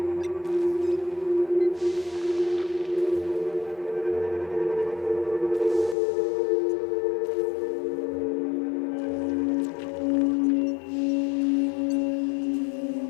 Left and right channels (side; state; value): right; drops out; at 6.0 s